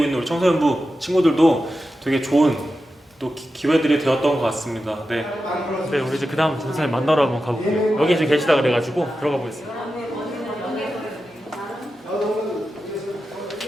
있는 우리 청소년부 친구들도 되게 좋은 또 기회들이 되었던 것 같습니다. 네, 우리 이제 그 다음 전사님 만나러 한번 가볼게요. 여기 지금 계시다 그래가지고 들어가 보겠습니다.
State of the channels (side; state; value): both; normal; correlation 0.91